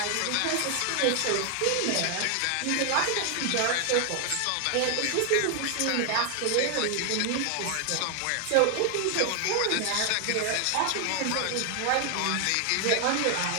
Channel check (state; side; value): different; both; correlation 0.00